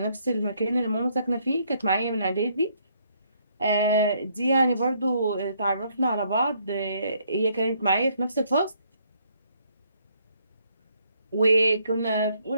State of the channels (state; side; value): inverted; both; correlation -0.69